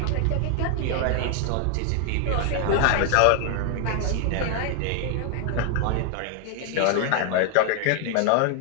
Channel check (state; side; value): different; both; correlation 0.00